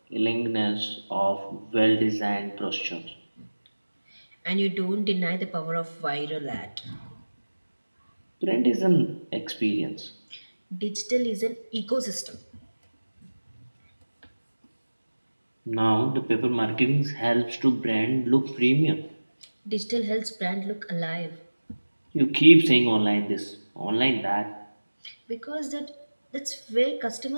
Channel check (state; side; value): inverted; both; correlation -1.00